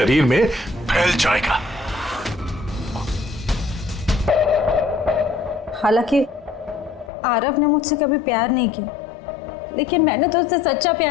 में फैल जाएगा। हालांकि आरव ने मुझसे कभी प्यार नहीं किया, लेकिन मैंने तो उससे सच्चा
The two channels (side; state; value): right; drops out; at 7.1 s